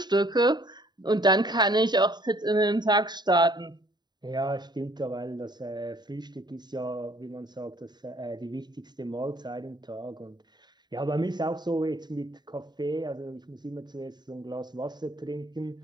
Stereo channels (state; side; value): late; left; 0.21 ms